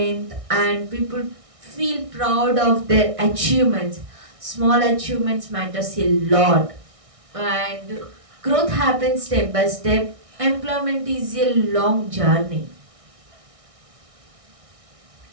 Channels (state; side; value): late; left; 1.6 ms